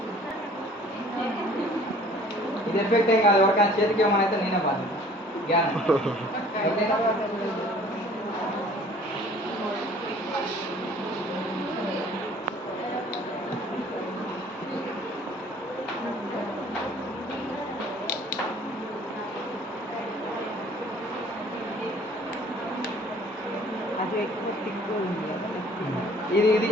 ఇది ఎఫెక్ట్ ఏం కాదు, ఎవరికైనా చేతికి ఏమని అయితే నేనే బాధ్యత. జ్ఞానం ఇది ఇది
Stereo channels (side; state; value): both; normal; correlation 0.53